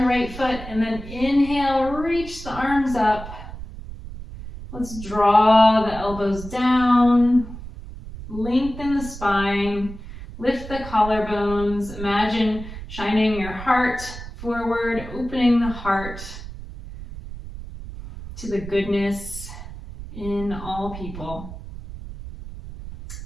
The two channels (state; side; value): noise; right; rumble, 12 dB below the sound